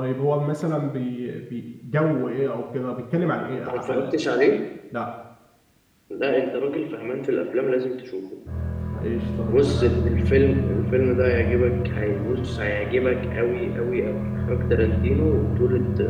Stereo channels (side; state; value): both; identical; correlation 1.00